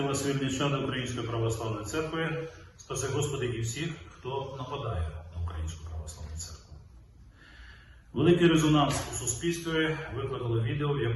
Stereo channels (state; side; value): identical; both; correlation 1.00